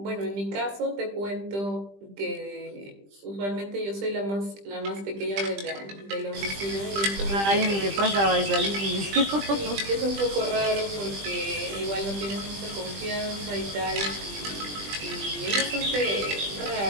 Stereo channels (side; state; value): left; late; 20 ms